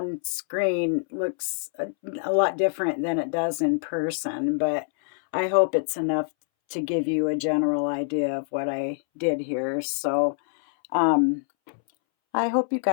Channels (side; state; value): right; silent; 61 dB below the other